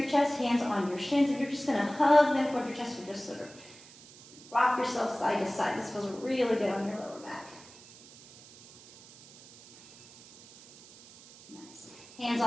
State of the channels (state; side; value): noise; right; hiss, 21 dB below the sound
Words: chest, hands on your shins, and you're just going to hug them toward your chest. Or just sort of rock yourself side to side. This feels really good on your lower back. Hands